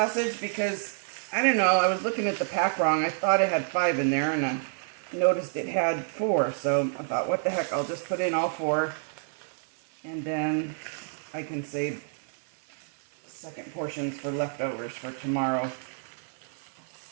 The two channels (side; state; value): left; silent; digital silence